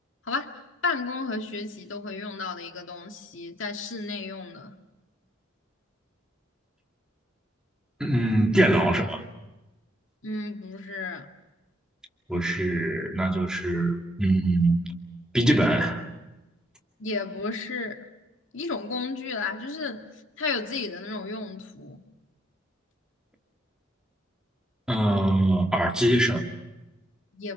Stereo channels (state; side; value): normal; both; correlation 0.74